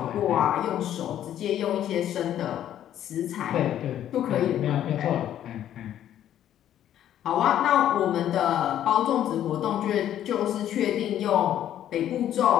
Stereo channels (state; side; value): quieter; right; 11.2 dB